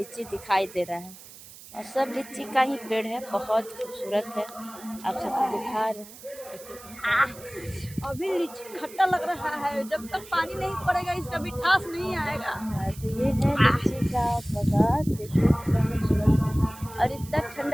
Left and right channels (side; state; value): right; noise; hiss, 18 dB below the sound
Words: दिखाई दे रहा है और सब लीची का ही पेड़ है, बहुत खूबसूरत है। आप सबको दिखा रहे हैं। अभी लीची खट्टा लग रहा है, जब तक पानी नहीं पड़ेगा इसका मिठास नहीं आएगा। तो ये है लीची का बागान, देखिए कितना खूबसूरत है और इतना